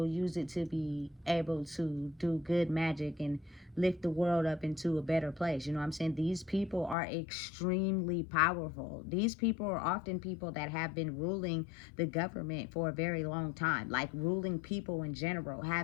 use it to be able to do good magic and lift the world up into a better place. You know what I'm saying? These people are extremely powerful. These people are often people that have been ruling the government for a very long time, like ruling people in general,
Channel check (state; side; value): drops out; right; at 7.0 s